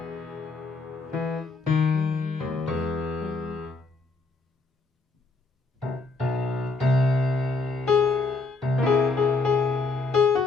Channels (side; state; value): right; quieter; 3.7 dB